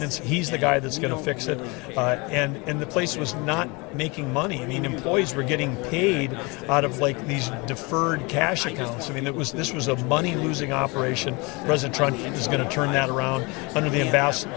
He's the guy that's going to fix it. And the place was not making money. I mean, employees were getting paid out of like these deferred cash accounts. I mean, this was a money-losing operation. President Trump is going to turn that around under the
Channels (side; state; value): right; quieter; 27.4 dB